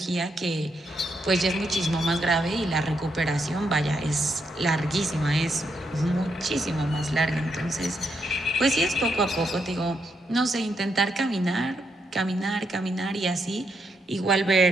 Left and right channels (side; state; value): both; normal; correlation 0.79